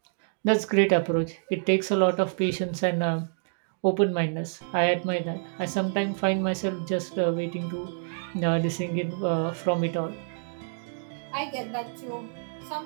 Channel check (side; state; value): left; silent; digital silence